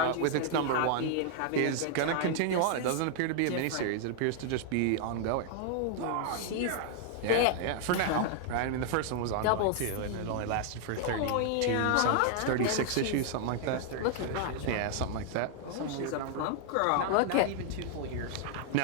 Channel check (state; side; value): different; both; correlation 0.00